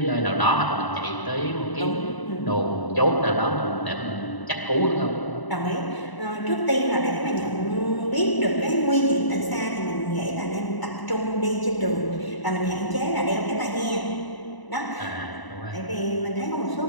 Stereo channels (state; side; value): late; right; 1.0 ms